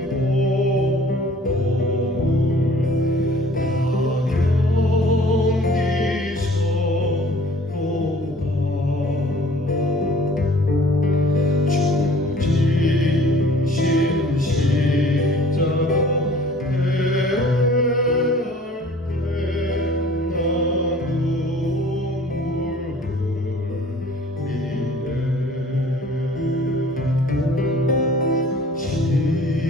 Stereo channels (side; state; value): both; normal; correlation 0.51